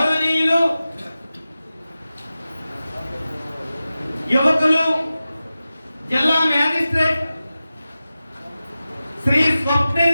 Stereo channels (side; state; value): both; inverted; correlation -0.95